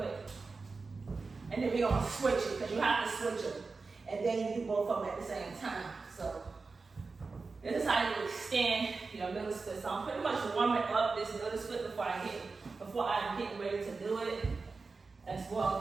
and then we're gonna switch it, because you have to switch them. And then you do both of them at the same time. So this is how you extend your middle split. So I'm pretty much warming up this middle split before I'm getting ready to do it as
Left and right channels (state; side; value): quieter; left; 4.2 dB